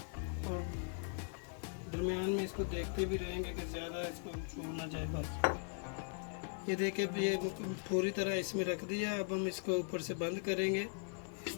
दरमियान में इसको देखते भी रहेंगे कि ज़्यादा इसको छू ना जाए। बस ये देखिए ये पूरी तरह इसमें रख दिया। अब हम इसको ऊपर से बंद करेंगे इस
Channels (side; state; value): right; silent; 51 dB below the other